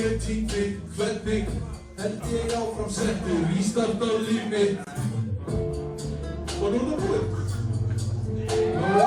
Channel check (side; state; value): both; identical; correlation 1.00